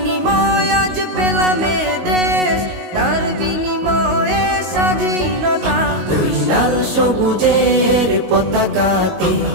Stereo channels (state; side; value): late; left; 19 ms